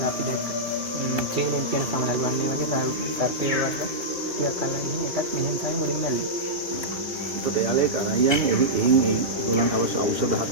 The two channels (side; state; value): left; late; 2.2 ms